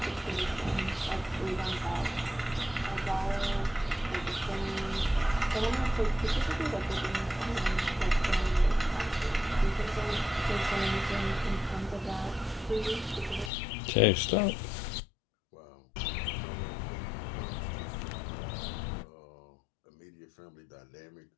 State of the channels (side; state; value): right; drops out; at 13.5 s